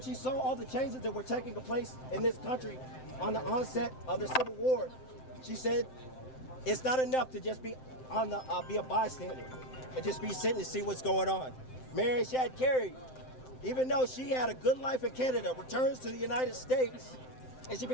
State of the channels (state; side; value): late; right; 7.7 ms